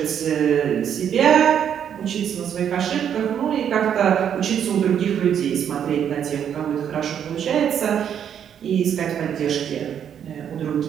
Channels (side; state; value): left; quieter; 8.8 dB